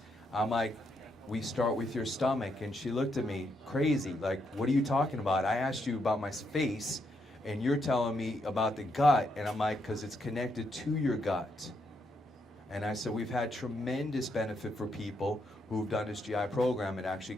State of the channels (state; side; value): normal; both; correlation 0.78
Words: I'm like, we start with your stomach. And she looked at me crazy, like, what are you talking about? I asked you about my face, and you're telling me about the gut. And I'm like, because it's connected to your gut. And I said, we've had tremendous benefit for people who've done this GI program and actually